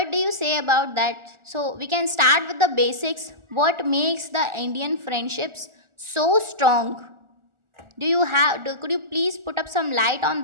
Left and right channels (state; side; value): late; left; 1.4 ms